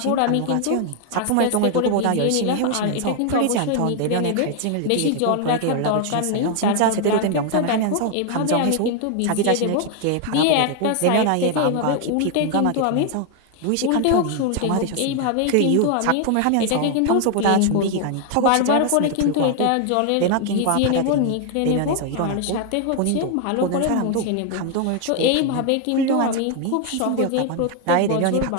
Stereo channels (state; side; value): different; both; correlation 0.00